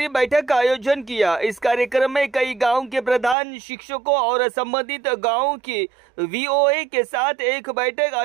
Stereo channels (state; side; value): drops out; left; at 3.4 s